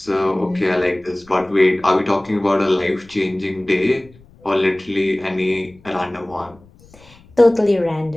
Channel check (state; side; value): noise; left; rumble, 27 dB below the sound